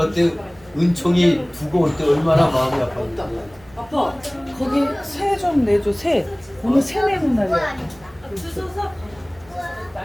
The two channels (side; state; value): right; noise; hum, 26 dB below the sound